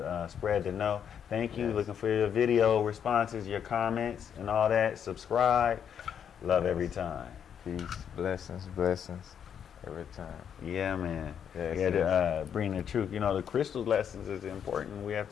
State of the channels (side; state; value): right; quieter; 8.3 dB